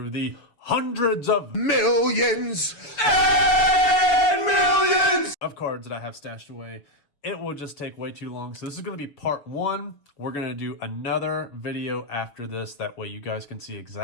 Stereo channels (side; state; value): right; late; 7.0 ms